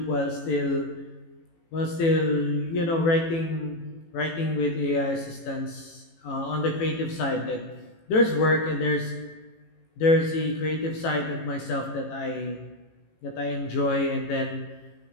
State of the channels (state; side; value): late; right; 18 ms